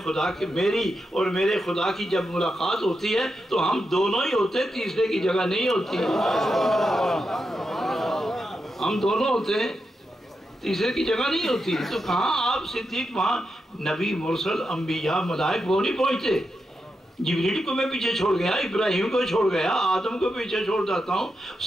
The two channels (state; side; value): normal; both; correlation 0.87